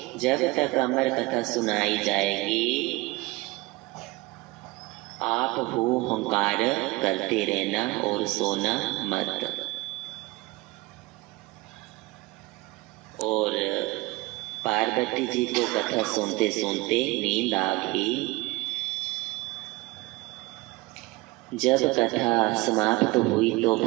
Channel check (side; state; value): left; quieter; 21.9 dB